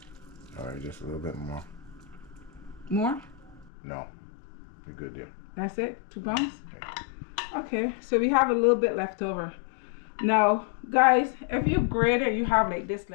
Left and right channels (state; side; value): drops out; right; at 3.7 s